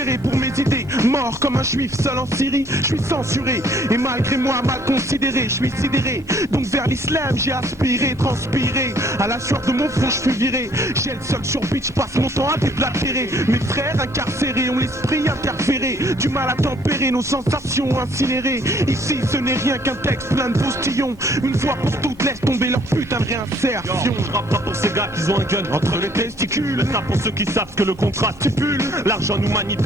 pour mes idées. Mort comme un juif seul en Syrie, je suis censuré. Et malgré moi mal considéré, je suis sidéré. Donc vers l'islam j'ai aspiré, transpiré. À la sueur de mon front je suis viré. J'ai le seul sur beat, je passe mon temps à déblatérer. Mes frères incarcérés ont l'esprit interféré. Du mal à tempérer nos sensations incinérées. Ici ce n'est rien qu'un texte plein de postillons. Une fois pour toutes laisse tomber leur putain de réinsertion. Je rappe pas pour ces gars qui ont un gun entre les testicules. Ça pour ceux qui savent que le contrat stipule. L'argent nous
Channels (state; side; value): normal; both; correlation 0.62